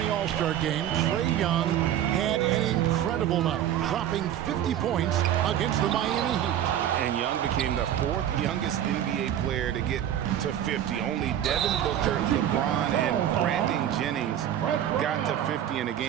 All-Star game, Trae Young had an incredible night, dropping 50 points against the Miami Heat. And Young became the fourth youngest NBA player to get to 50. Only Devin Booker, LeBron, and Brandon Jennings got to 50 in a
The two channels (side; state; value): left; quieter; 10.8 dB